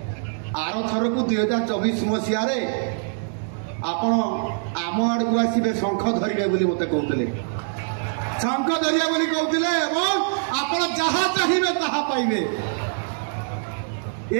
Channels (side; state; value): left; silent; digital silence